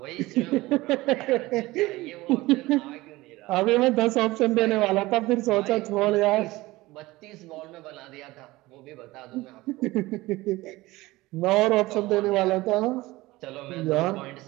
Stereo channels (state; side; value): quieter; left; 19.5 dB